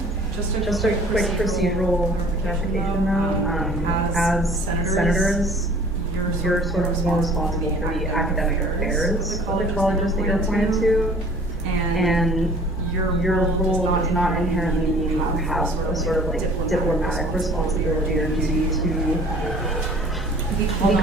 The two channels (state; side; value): normal; both; correlation 0.50